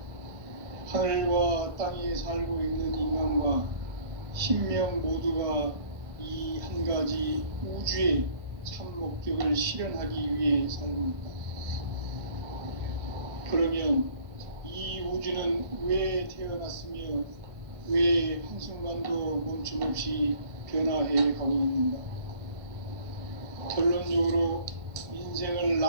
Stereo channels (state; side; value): late; left; 1.2 ms